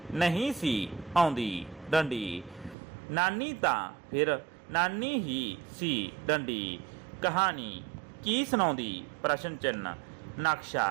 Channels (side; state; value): left; drops out; at 2.8 s